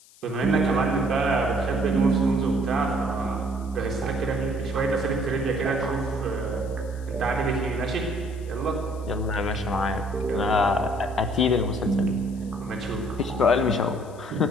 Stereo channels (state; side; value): noise; left; hiss, 25 dB below the sound